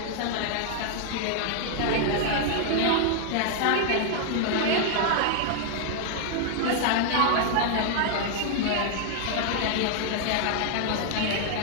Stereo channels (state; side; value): different; both; correlation 0.00